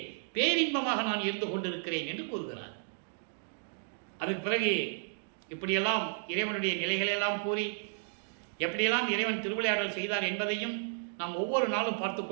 பேரின்பமாக நான் இருந்து கொண்டிருக்கிறேன் என்று கூறுகிறார். அதுக்கு பிறகு இப்படியெல்லாம் இறைவனுடைய நிலைகளெல்லாம் கூறி எப்படியெல்லாம் இறைவன் திருவிளையாடல் செய்தார் என்பதையும் நாம் ஒவ்வொரு நாளும் பார்த்து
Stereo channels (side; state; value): left; silent; digital silence